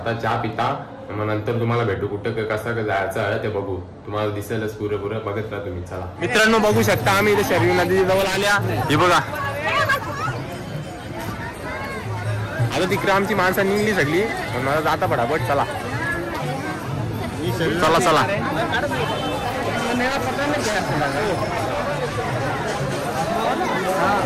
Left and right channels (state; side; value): identical; both; correlation 1.00